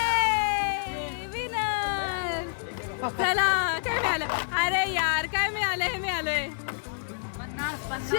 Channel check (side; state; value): right; silent; digital silence